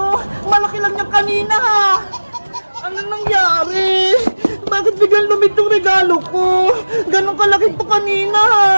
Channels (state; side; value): inverted; both; correlation -1.00